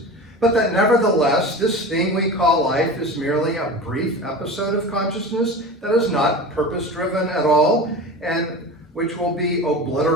but that nevertheless this thing we call life is merely a brief episode of consciousness that is not purpose-driven at all and which will be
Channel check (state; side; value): normal; both; correlation 0.32